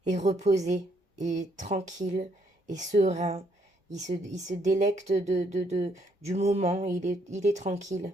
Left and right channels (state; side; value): normal; both; correlation 0.71